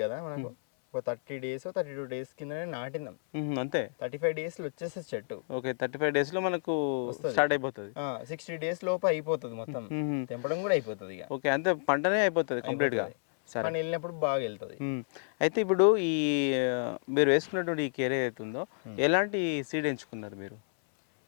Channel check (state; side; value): silent; right; 57 dB below the other